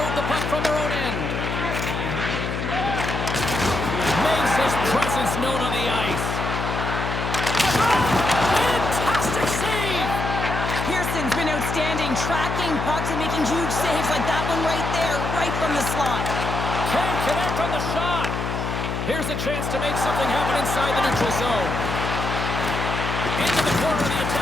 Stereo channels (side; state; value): left; noise; hum, 3 dB below the sound